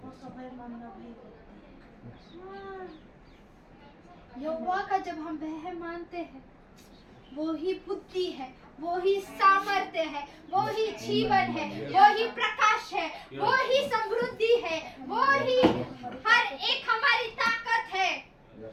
यहोवा का जब हम वह मानते हैं, वो ही बुद्धि है, वो ही सामर्थ्य है, वो ही जीवन है, वो ही प्रकाश है, वो ही समृद्धि है, वो ही हर एक हमारी ताकत है।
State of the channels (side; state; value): both; identical; correlation 1.00